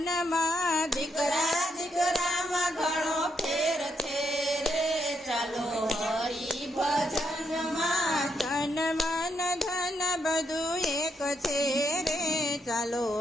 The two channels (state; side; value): normal; both; correlation 0.78